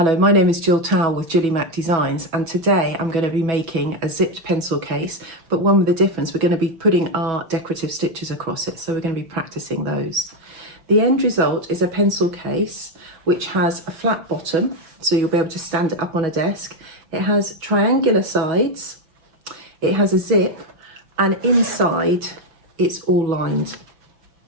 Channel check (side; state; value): left; late; 6.2 ms